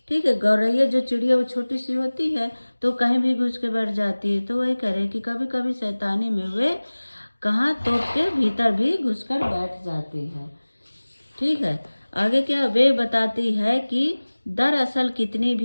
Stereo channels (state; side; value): inverted; both; correlation -1.00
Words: ठीक है, गौरैया जो चिड़िया वो छोटी सी होती है तो कहीं भी घुस के बैठ जाती है। तो वही कह रहे हैं कि कभी कभी शैतानी में वे कहाँ, तोप के भीतर भी घुसकर बैठ जाती है। ठीक है, आगे क्या, वे बताती है कि दरअसल कितनी